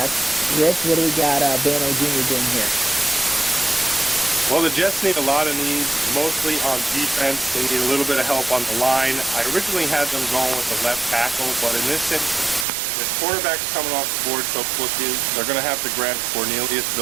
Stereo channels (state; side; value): drops out; left; at 12.7 s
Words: Rich, what do we got Bano Jr. doing here? Well, the Jets need a lot of needs, mostly on defense. They need a little bit of help on the line. I originally had them going with the left tackle, but in this instance, with quarterbacks coming off the board so quickly, they're going to have to grab Cornelius